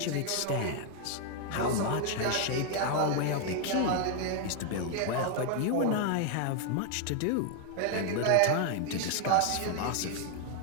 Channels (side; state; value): both; different; correlation 0.00